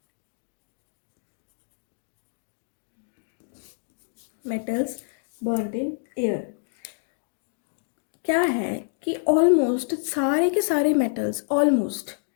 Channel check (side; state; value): right; silent; digital silence